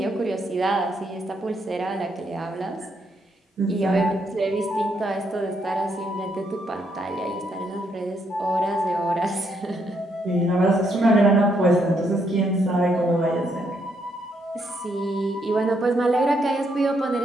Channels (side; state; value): both; normal; correlation 0.75